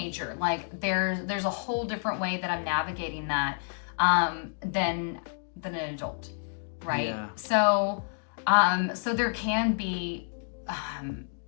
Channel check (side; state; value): right; silent; digital silence